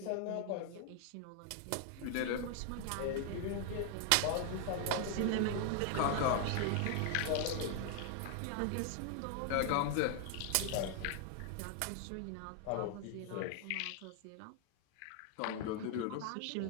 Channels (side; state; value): both; different; correlation 0.00